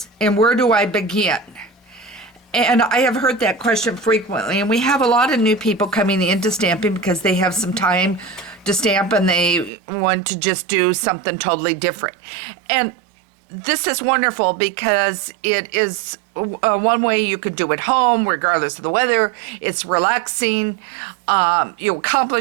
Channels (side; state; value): left; drops out; at 9.7 s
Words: and where do I begin? And I have heard that question frequently, and we have a lot of new people coming into stamping because they have some time to stamp and they want to just do something totally different. And this is wonderful because it is one way you could do at home regardless of the weather. It's relaxing, you